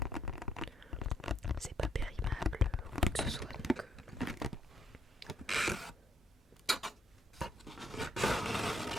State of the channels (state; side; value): normal; both; correlation 0.70